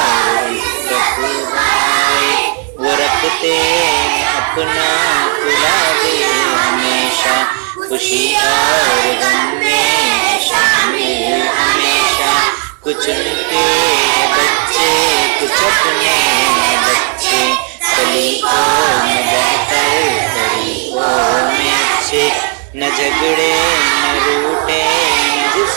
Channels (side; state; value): left; quieter; 38.1 dB